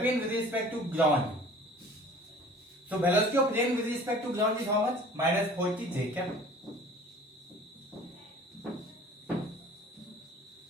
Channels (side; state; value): both; normal; correlation 0.47